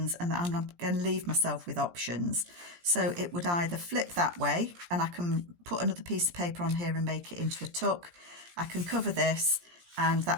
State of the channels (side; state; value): left; late; 17 ms